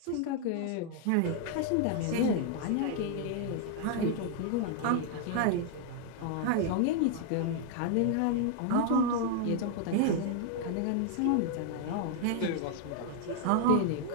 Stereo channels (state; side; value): different; both; correlation 0.00